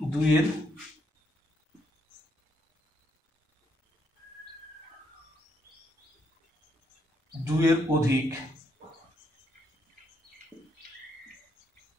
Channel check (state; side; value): normal; both; correlation 0.75